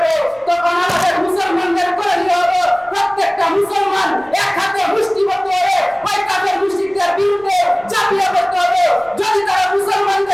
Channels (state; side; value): noise; right; rumble, 27 dB below the sound